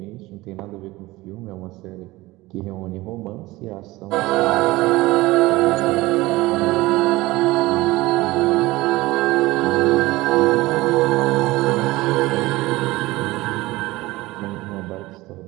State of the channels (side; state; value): left; quieter; 19.6 dB